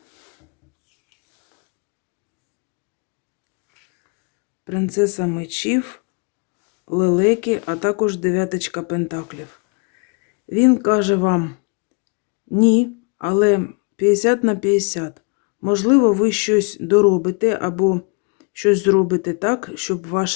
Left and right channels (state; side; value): quieter; right; 34.6 dB